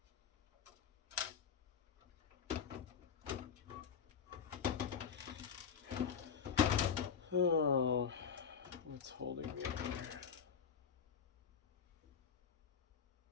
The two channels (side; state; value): right; quieter; 6.9 dB